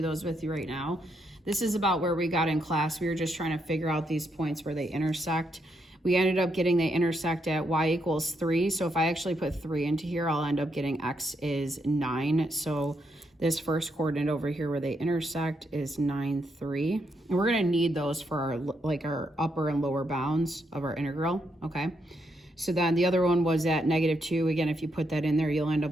those with you right now. This is about where we got in class. We were just trying to figure out these points where they intersect. We ended up getting they intersect at y equals 3, so if I actually put 3 into here, I'll end up getting x is 9. So this first coordinate over here where they intersect is 9, 3. And we're going to need those for our upper and lower bounds of our integral, okay? So then the other one was at -2. Again, if you put that in there, you'll end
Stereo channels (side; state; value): both; normal; correlation 0.79